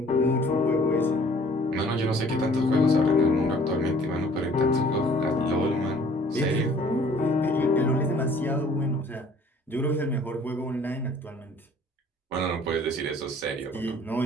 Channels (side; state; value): both; normal; correlation 0.55